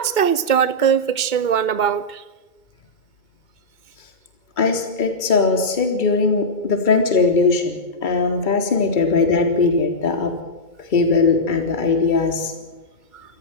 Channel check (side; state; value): right; late; 2.2 ms